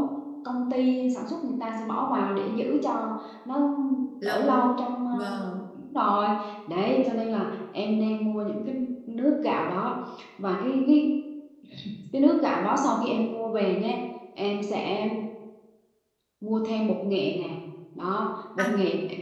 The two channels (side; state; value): both; identical; correlation 1.00